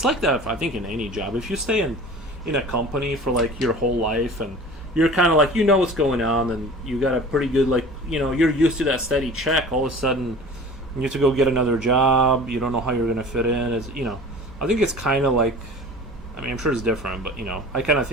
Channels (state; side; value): normal; both; correlation 0.41